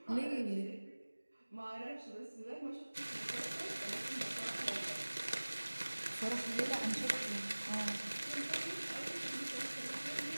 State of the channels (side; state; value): both; inverted; correlation -1.00